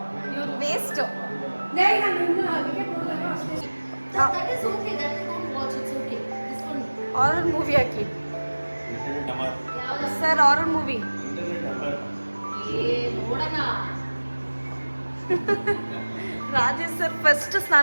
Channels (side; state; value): both; inverted; correlation -1.00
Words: ಇವ್ರು ವೇಸ್ಟ್. ಹಾರರ್ ಮೂವಿ ಹಾಕಿ sir, horror movie Rajesh sir first